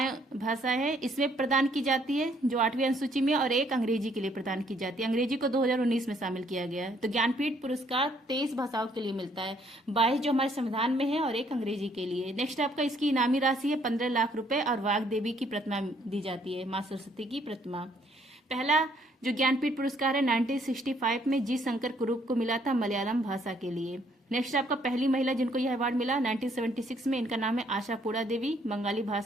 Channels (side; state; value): both; normal; correlation 0.66